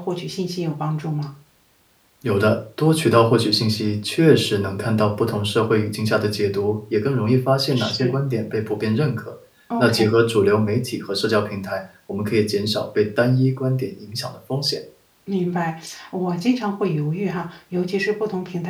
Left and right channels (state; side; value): identical; both; correlation 1.00